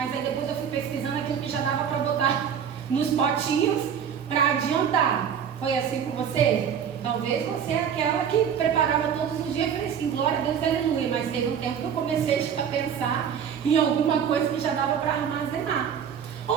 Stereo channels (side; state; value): left; quieter; 8.0 dB